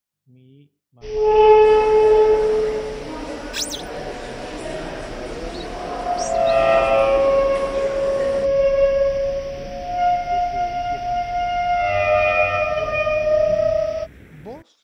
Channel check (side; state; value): both; identical; correlation 1.00